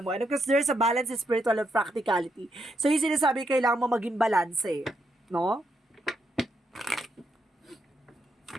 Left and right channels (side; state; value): both; normal; correlation 0.79